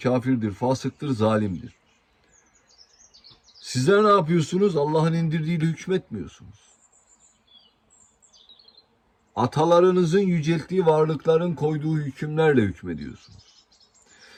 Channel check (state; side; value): identical; both; correlation 1.00